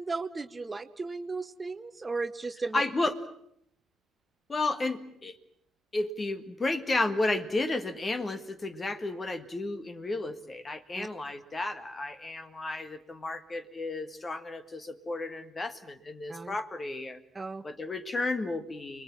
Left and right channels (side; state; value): both; normal; correlation 0.89